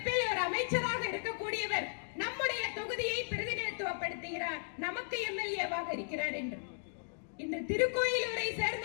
ஒரு அமைச்சராக இருக்கக்கூடியவர் நம்முடைய தொகுதியை பிரதிநிதித்துவப்படுத்துகிறார், நமக்கு எம்எல்ஏவாக இருக்கிறார் என்று. இன்று திருக்கோயிலூரை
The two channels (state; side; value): silent; right; digital silence